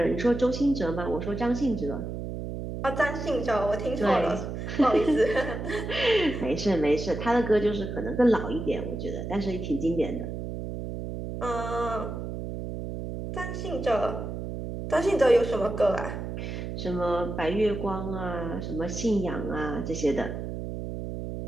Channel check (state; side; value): noise; right; hum, 6 dB below the sound